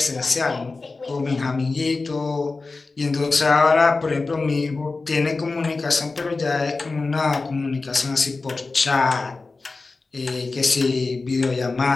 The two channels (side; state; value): right; quieter; 3.8 dB